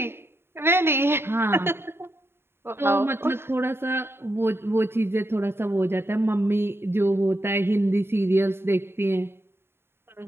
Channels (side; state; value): left; late; 0.11 ms